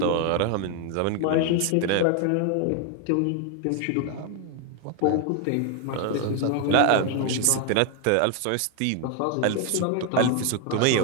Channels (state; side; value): different; both; correlation 0.01